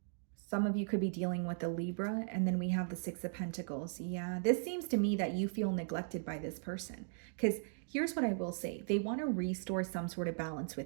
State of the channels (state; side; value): silent; left; digital silence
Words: Some of you could be dealing with a Libra, and then we have the Six of Pentacles. Yeah, this seems to me that you feel neglected by this person. Because here's what I will say, they want to restore some sort of balance